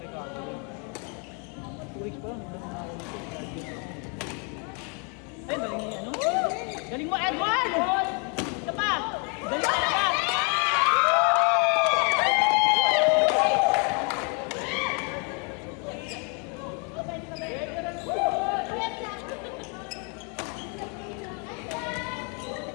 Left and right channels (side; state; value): right; quieter; 36.5 dB